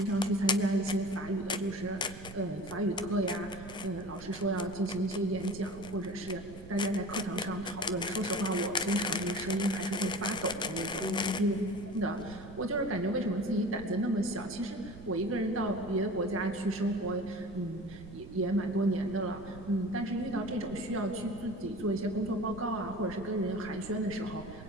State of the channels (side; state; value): right; noise; rumble, 15 dB below the sound